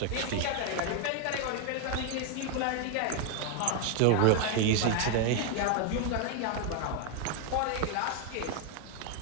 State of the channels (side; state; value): both; different; correlation 0.01